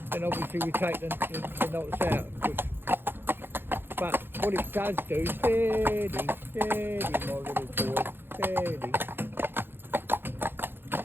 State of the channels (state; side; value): late; left; 0.10 ms